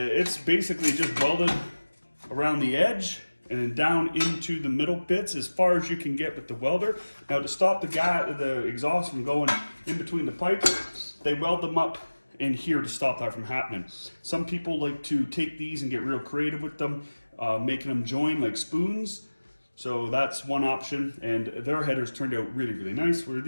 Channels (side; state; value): both; inverted; correlation -1.00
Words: basically just welded around the edge and then down into the middle bits as far as you can get with the welder. Now to stop the exhaust from going in between the pipes, they weld them up in here to stop that from happening. Some people like to take these and get real creative with them, making them join like spoons. So that's one option, and their headers turned out really, really nice, where